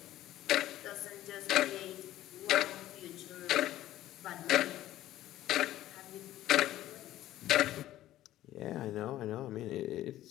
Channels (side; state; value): right; quieter; 14.1 dB